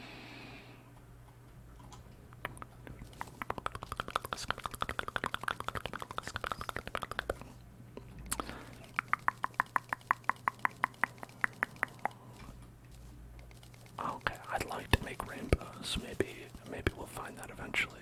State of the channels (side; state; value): both; identical; correlation 1.00